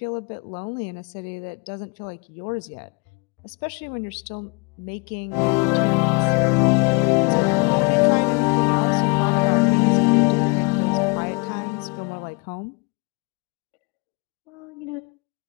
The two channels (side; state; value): right; quieter; 30.9 dB